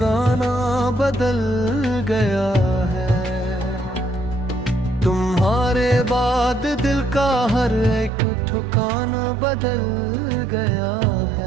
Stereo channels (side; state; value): left; drops out; at 8.1 s